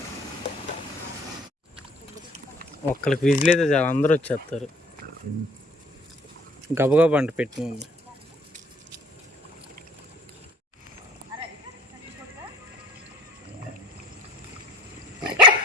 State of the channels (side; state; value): both; normal; correlation 0.55